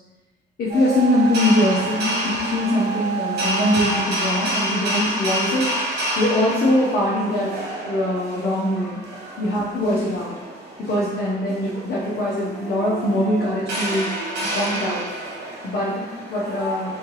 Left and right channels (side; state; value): both; normal; correlation 0.49